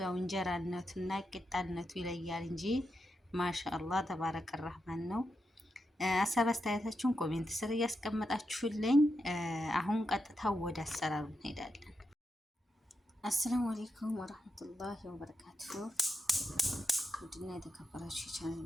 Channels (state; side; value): normal; both; correlation 0.86